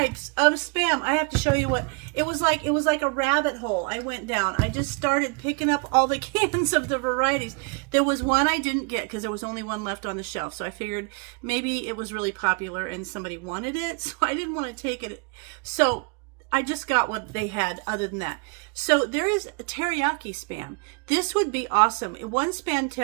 of spam. I have to show you what it was like. It was like a rabbit hole. I went down. I just started picking up all the cans of the varieties. There was one I didn't get because there was only one left on the shelf. So I figured maybe it was really popular and somebody wanted it. So I didn't want to take it. So I just got what they had other than that. So there is a teriyaki spam. This would be awesome. In one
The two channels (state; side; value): quieter; left; 33.6 dB